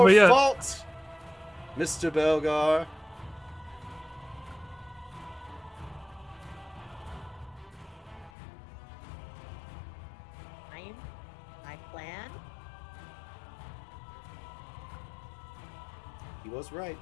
your yet. fault, Mr. Belgar. My plan. He was right.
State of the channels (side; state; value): right; drops out; at 8.3 s